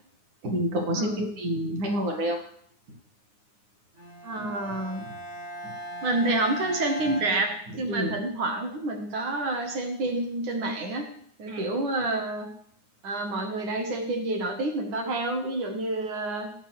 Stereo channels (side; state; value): left; late; 9.7 ms